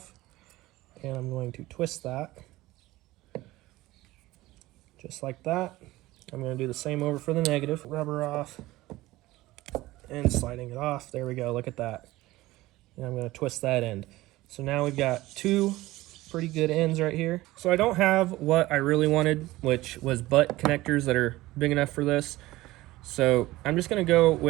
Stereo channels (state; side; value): quieter; left; 18.1 dB